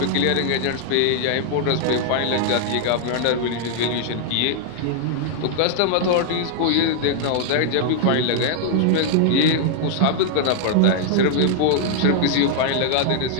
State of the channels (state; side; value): different; both; correlation -0.01